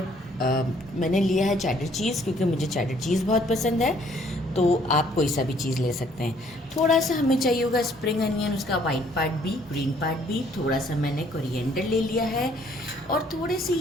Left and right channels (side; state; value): both; normal; correlation 0.63